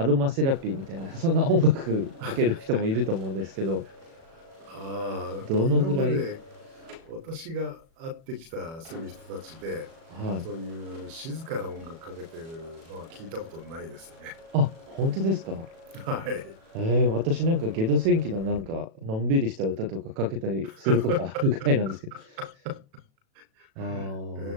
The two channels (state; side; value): late; left; 37 ms